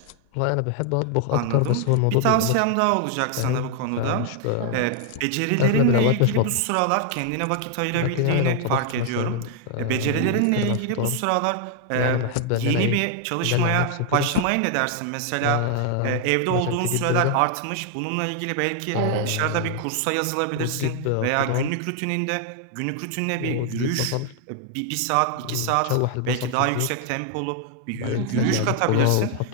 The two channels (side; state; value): both; different; correlation 0.00